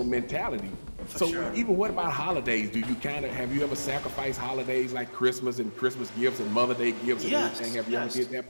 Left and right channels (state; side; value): inverted; both; correlation -1.00